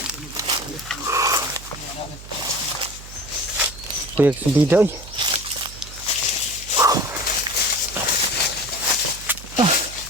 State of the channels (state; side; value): noise; right; hum, 15 dB below the sound